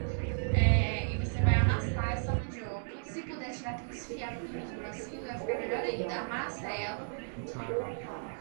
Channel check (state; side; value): silent; left; digital silence